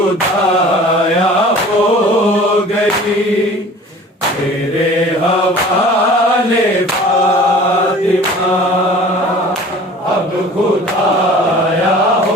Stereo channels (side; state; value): both; normal; correlation 0.45